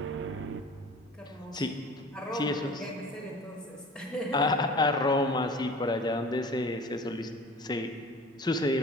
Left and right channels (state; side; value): normal; both; correlation 0.42